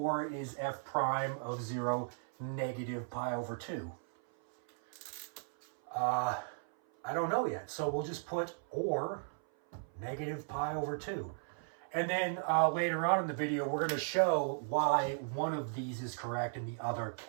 is f prime of 0 negative pi over 2? I don't know yet, so we'll just put or negative pi over 2. And then later on in the video, we're going to show why one of these is correct and the other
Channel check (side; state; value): left; silent; 54 dB below the other